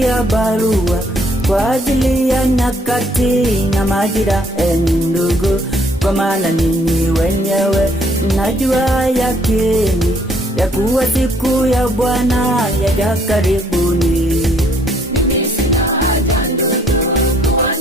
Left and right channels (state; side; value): normal; both; correlation 0.65